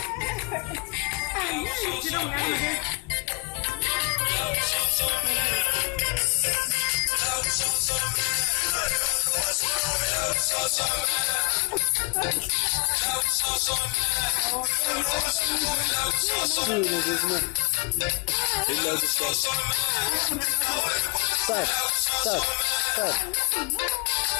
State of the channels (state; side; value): quieter; right; 31.5 dB